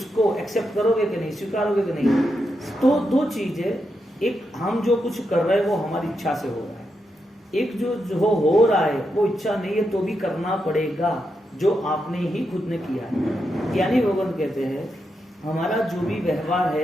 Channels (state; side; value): normal; both; correlation 0.84